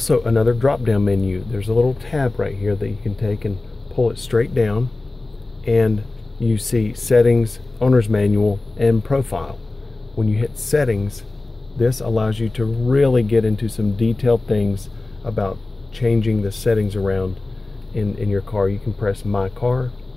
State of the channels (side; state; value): right; quieter; 3.1 dB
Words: another drop-down menu. There's a little tab right here that you can take and pull it straight down, and you see settings, owner's manual, and profile. When you hit settings, this allows you to really get into some detailed things about changing the settings around in your car. You can press My Car,